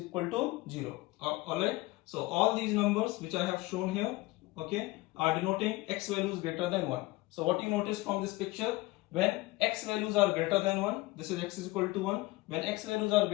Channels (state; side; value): quieter; right; 20.5 dB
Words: to 0. Alright. So all these numbers which I have shown here, are denoting x values greater than 1. So what you notice from this picture, when x values are greater than 1, this is x is equal to 1. When x values are